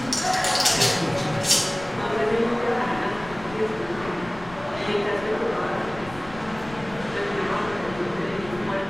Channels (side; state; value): left; noise; rumble, 17 dB below the sound